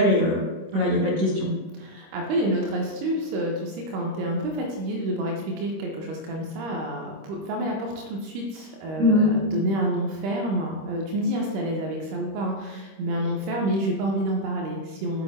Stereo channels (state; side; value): late; left; 26 ms